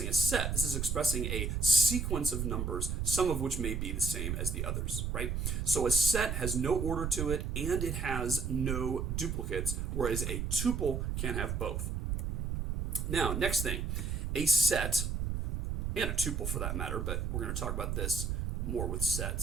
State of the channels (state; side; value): noise; right; rumble, 2 dB below the sound